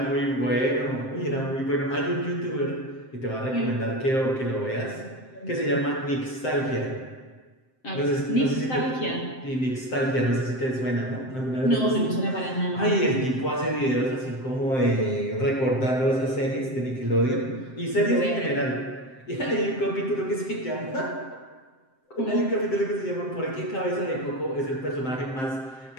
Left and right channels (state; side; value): late; right; 7.7 ms